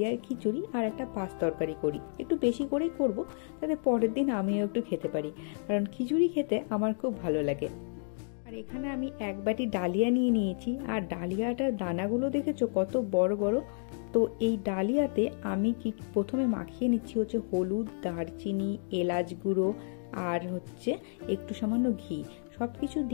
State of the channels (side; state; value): right; silent; digital silence